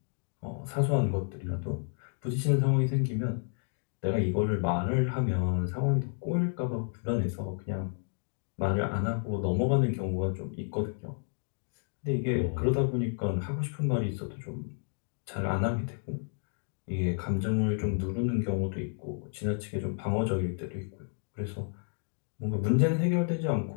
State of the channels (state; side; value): silent; right; 57 dB below the other